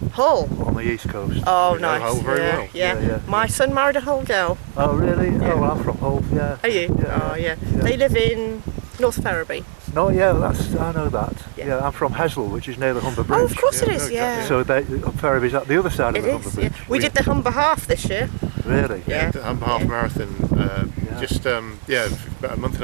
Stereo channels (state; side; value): silent; left; 58 dB below the other